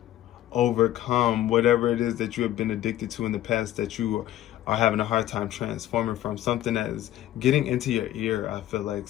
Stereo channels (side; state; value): right; quieter; 13.4 dB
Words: overcome whatever it is that you have been addicted to in the past that you are having a hard time transforming from. Something that is getting into your ear. I feel like